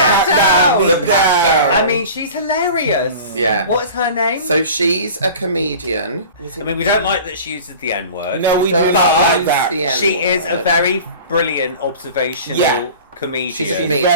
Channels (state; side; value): inverted; both; correlation -0.39